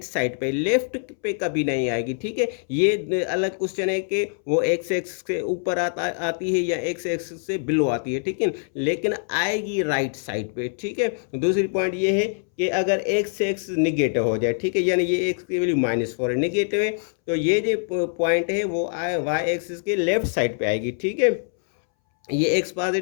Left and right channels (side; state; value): right; silent; 63 dB below the other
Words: साइड पे, लेफ्ट पे कभी नहीं आएगी, ठीक है। ये अलग क्वेश्चन है कि वो x एक्सिस के ऊपर आती है या x एक्सिस से बिलो आती है, ठीक है, लेकिन आएगी राइट साइड पे, ठीक है। दूसरी पॉइंट ये है कि अगर x एक्सिस निगेटिव हो जाए, ठीक है, यानी ये x की वैल्यू -4 है, निगेटिव है, तो ये जो पॉइंट है वो y एक्सिस के लेफ्ट साइड पे आएगी, ठीक है। ये x